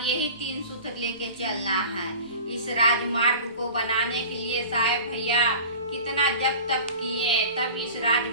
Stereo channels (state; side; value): inverted; both; correlation -0.39